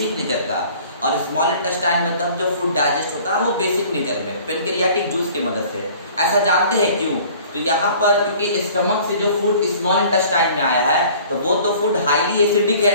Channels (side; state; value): both; inverted; correlation -0.50